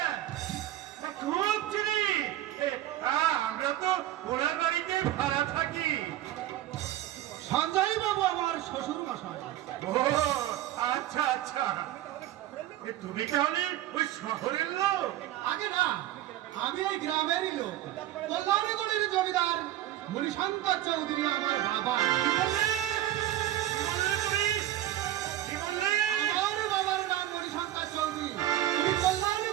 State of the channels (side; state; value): left; quieter; 13.5 dB